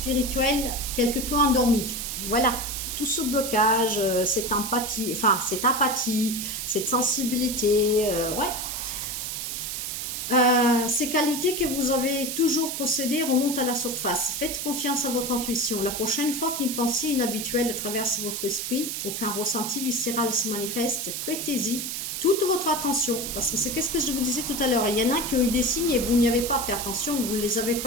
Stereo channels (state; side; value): noise; right; hiss, 4 dB below the sound